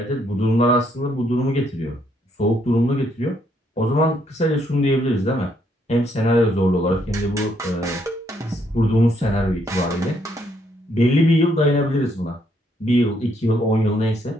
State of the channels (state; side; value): normal; both; correlation 0.72